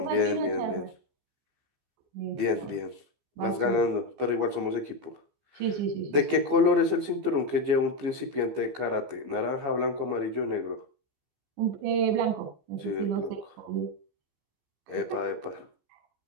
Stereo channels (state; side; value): late; left; 14 ms